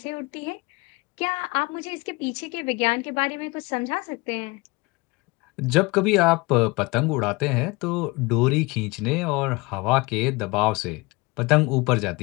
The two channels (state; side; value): quieter; right; 25.1 dB